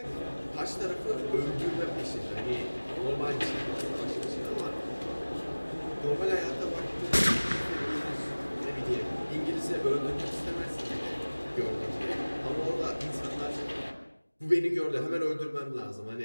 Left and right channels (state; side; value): inverted; both; correlation -1.00